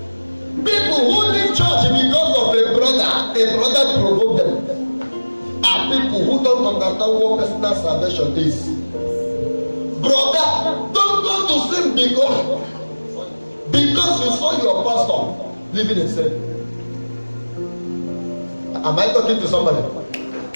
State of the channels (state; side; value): inverted; both; correlation -1.00